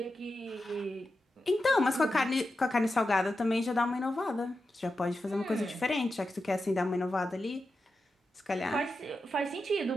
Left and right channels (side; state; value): both; normal; correlation 0.90